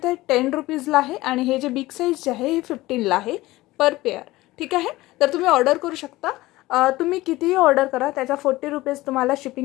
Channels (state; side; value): quieter; right; 18.5 dB